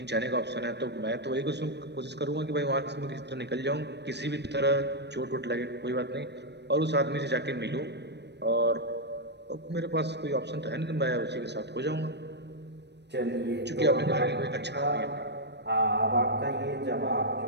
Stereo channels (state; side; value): late; left; 0.50 ms